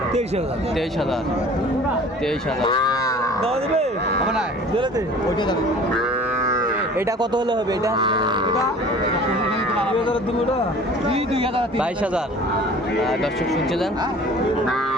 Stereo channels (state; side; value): normal; both; correlation 0.46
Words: 23,000। 23,000। 23,000। দেওয়া দেবে? হবে না, দিলে ওইটাই দাম। এটা কত হলে হবে? এটা 2000 দেবো। ওটা 2000। 22,000। দর্শক শুনছিলেন।